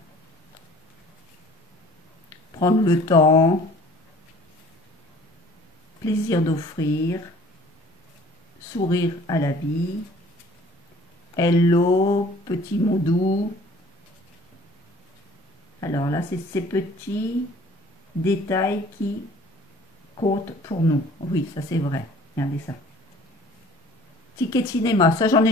Prendre le temps. Plaisir d'offrir. Sourire à la vie. Hello, petit mot doux. Alors là, c'est ces petits détails qui comptent pour nous. Oui, ça c'est vrai. Regardez ça. Ticket de cinéma. Ça, j'en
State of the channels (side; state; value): both; normal; correlation 0.51